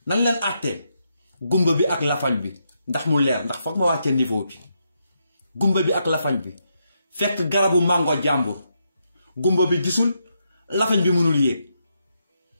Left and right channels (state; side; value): inverted; both; correlation -0.81